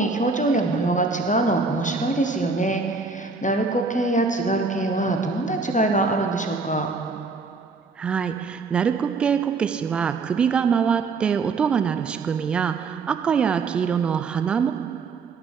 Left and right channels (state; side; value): quieter; left; 4.2 dB